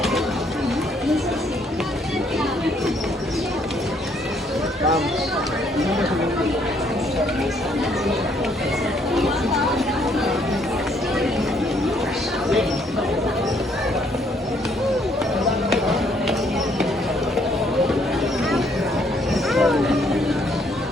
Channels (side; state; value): both; normal; correlation 0.68